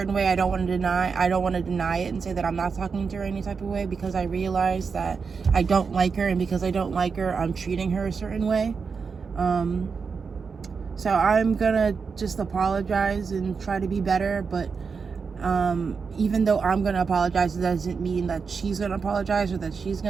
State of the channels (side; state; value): left; quieter; 5.4 dB